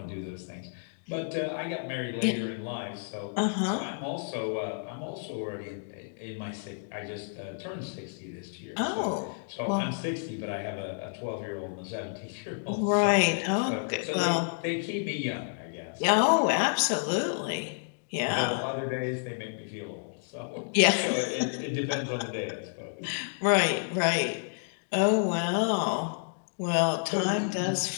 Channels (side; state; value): right; silent; digital silence